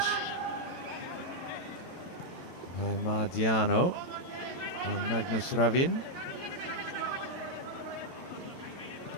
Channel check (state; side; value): late; right; 22 ms